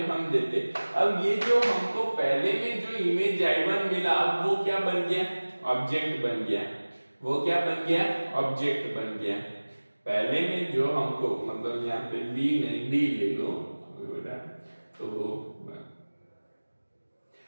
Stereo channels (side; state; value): both; inverted; correlation -1.00